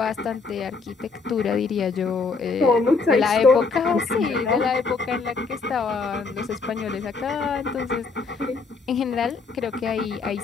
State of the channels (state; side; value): quieter; right; 4.4 dB